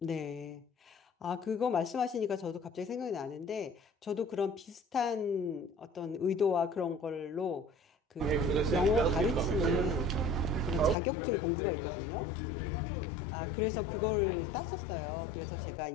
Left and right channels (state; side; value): drops out; right; at 11.0 s